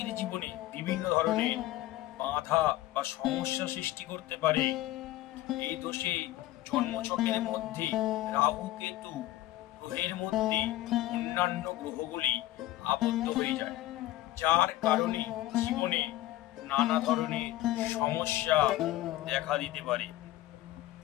জীবনে বিভিন্ন ধরনের বাধা বা সমস্যা সৃষ্টি করতে পারে। এই দোষে জন্মছকের মধ্যে রাহু কেতু গ্রহের মধ্যে অন্যান্য গ্রহগুলি আবদ্ধ হয়ে যায়, যার কারণে জীবনে নানা ধরনের সমস্যা দেখা দিতে পারে।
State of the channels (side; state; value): right; quieter; 15.6 dB